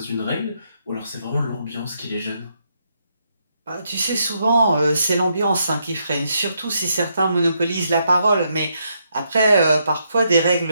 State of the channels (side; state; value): both; inverted; correlation -0.77